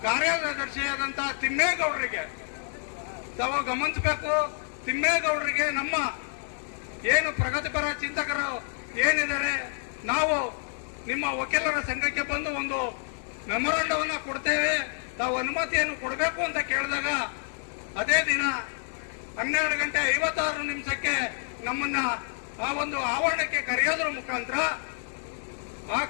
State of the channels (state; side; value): silent; right; 59 dB below the other